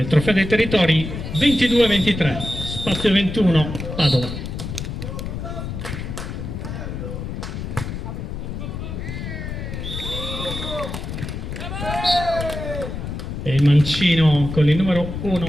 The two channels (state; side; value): noise; left; rumble, 6 dB below the sound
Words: Trofeo dei Territori 22-23, spazio 21, Padova. E il mancino con il numero